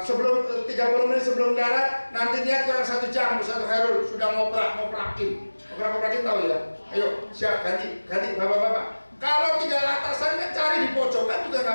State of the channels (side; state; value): both; inverted; correlation -1.00